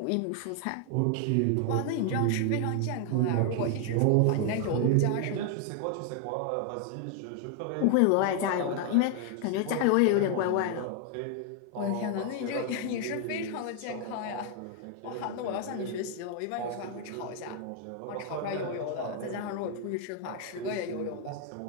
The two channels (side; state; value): both; different; correlation 0.00